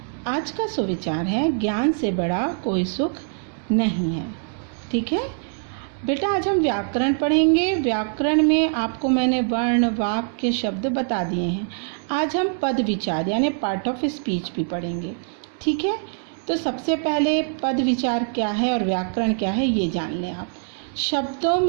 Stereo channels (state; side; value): silent; left; digital silence